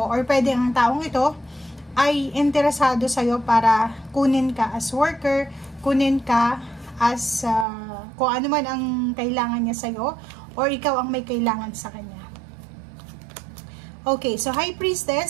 or pwedeng ang taong ito ay interesado sa'yo para kunin ka as worker, kunin ka as kung ano man ang kailangan niya sa'yo, or ikaw ang may kailangan sa kanya. Okay, so High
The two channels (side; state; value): left; drops out; at 7.7 s